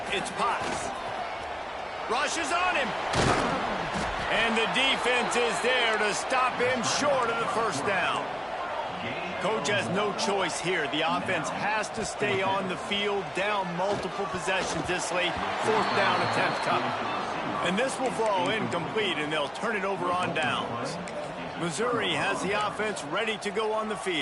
it's Potts. Rushes on him. And the defense is there to stop him short of the first down. Coach has no choice here. The offense has to stay on the field, down multiple possessions this late. Fourth down attempt coming. And this will fall incomplete, and they'll turn it over on downs. Missouri has the offense ready to go on the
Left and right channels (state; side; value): identical; both; correlation 1.00